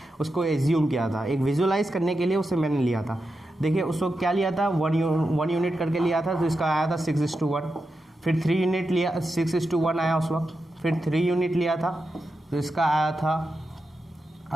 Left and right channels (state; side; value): normal; both; correlation 0.89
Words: उसको एज्यूम किया था एक विजुअलाइज करने के लिए, उसे मैंने लिया था। देखिए उस वक्त क्या लिया था, 1 यूनिट करके लिया था, तो इसका आया था 6:1। फिर 3 यूनिट लिया, 6:1 आया उस वक्त। फिर 3 यूनिट लिया था तो इसका आया था